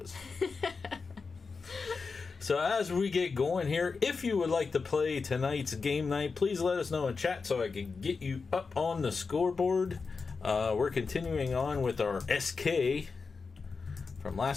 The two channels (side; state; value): right; quieter; 4.7 dB